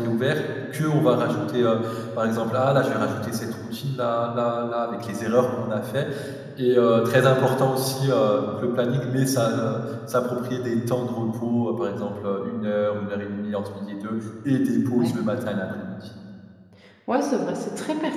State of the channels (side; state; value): both; identical; correlation 1.00